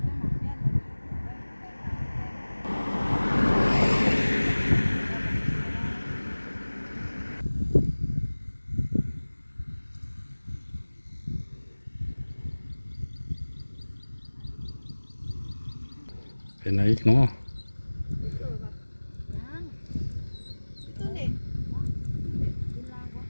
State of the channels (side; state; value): both; inverted; correlation -1.00